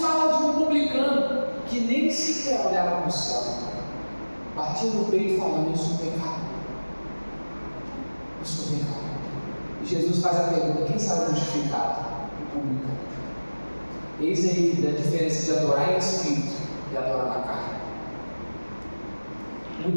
fala de um publicano que nem sequer olhava para o céu, batia no peito falando: eu sou pecado, eu sou pecado. E Jesus faz a pergunta: quem sabe justificado? O publicano. Eis aí a diferença de adorar em espírito e adorar na carne.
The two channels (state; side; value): inverted; both; correlation -1.00